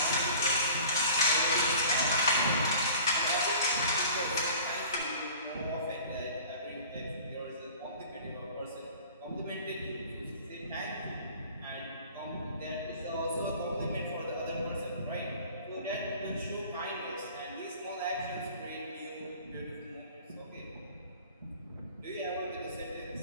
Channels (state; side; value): inverted; both; correlation -0.46